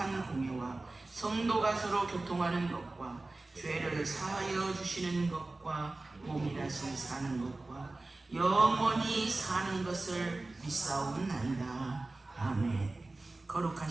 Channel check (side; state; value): left; quieter; 3.1 dB